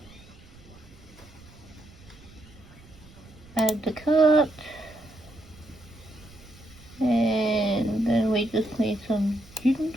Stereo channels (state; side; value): noise; right; rumble, 22 dB below the sound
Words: Add the cart. And then we just need some